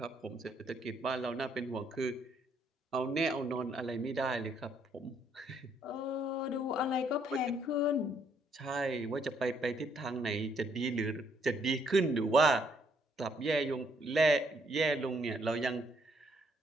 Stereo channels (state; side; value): normal; both; correlation 0.69